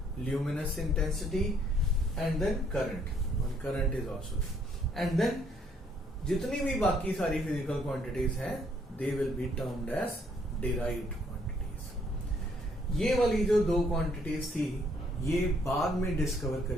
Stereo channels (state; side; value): normal; both; correlation 0.67